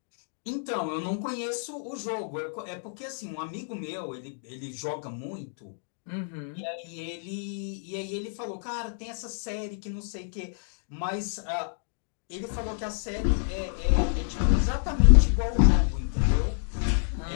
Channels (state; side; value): silent; right; digital silence